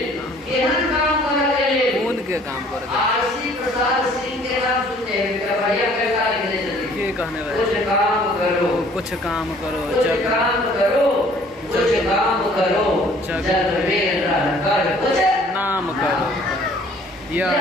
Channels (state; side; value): normal; both; correlation 0.56